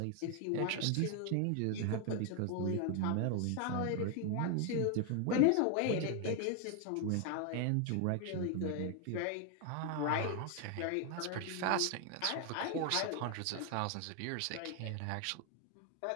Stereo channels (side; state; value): both; different; correlation 0.00